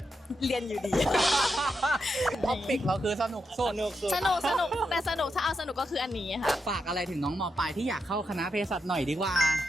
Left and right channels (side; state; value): both; normal; correlation 0.85